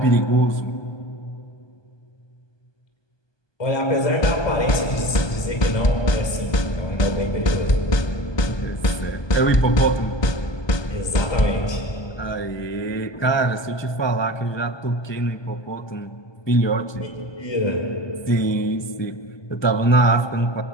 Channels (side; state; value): right; late; 1.2 ms